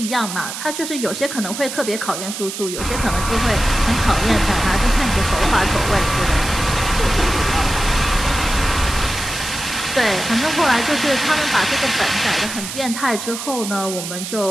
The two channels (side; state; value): right; noise; hiss, 7 dB below the sound